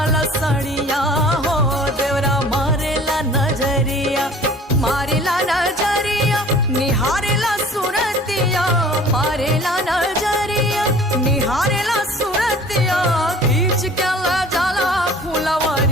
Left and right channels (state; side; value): normal; both; correlation 0.48